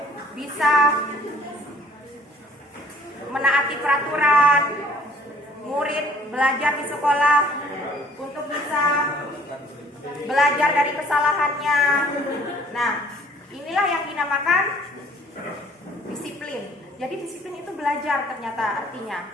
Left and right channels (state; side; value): normal; both; correlation 0.56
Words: bisa menaati peraturan. Murid belajar di sekolah untuk bisa belajar dari kesalahannya. Nah, inilah yang dinamakan disiplin. Jadi disiplin itu belajar ternyata artinya.